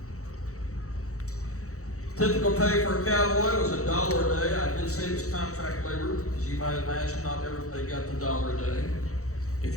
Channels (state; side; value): late; right; 0.65 ms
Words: Typical pay for a cowboy was $1 a day. I did say it was contract labor, as you might imagine, not everybody got the $1 a day. If